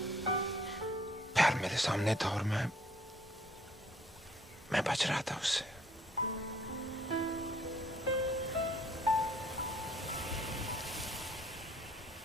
प्यार मेरे सामने था और मैं बच रहा था उससे।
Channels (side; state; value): both; normal; correlation 0.61